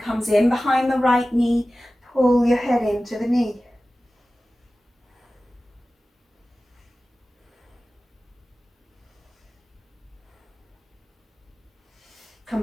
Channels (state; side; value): normal; both; correlation 0.96